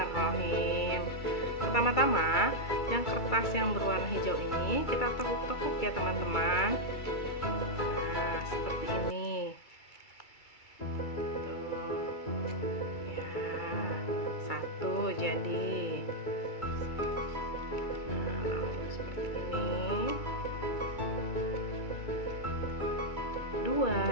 Pertama-tama, yang kertas yang berwarna hijau ini kita tekuk-tekuk ya teman-teman. Nah, seperti ini. Tuh. Ya, 1 jadi. Nah, lalu seperti ini. 2.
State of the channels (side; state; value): right; late; 2.3 ms